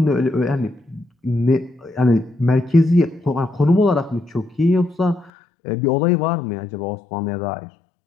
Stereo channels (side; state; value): right; drops out; at 5.3 s